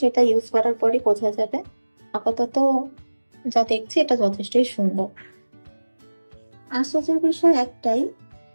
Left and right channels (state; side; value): inverted; both; correlation -1.00